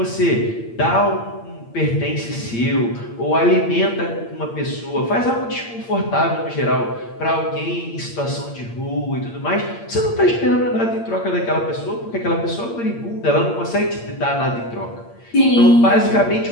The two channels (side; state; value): right; late; 8.7 ms